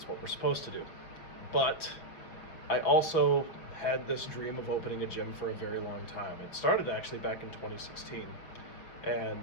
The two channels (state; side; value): late; right; 6.0 ms